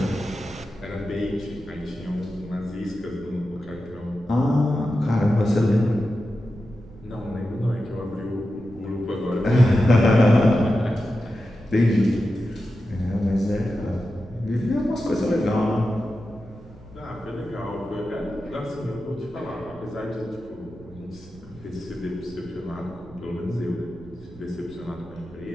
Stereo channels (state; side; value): noise; right; rumble, 20 dB below the sound